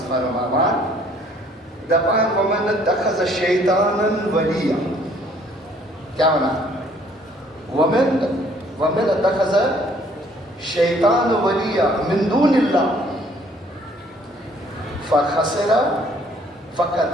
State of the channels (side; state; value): both; normal; correlation 0.61